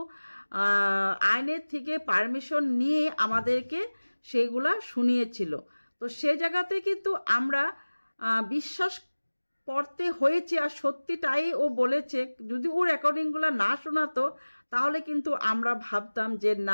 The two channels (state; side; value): inverted; both; correlation -1.00